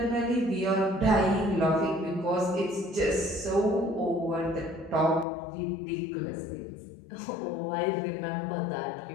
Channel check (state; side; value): drops out; right; at 5.2 s